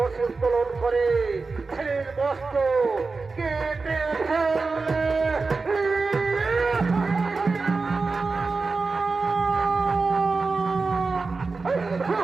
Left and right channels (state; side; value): quieter; left; 4.1 dB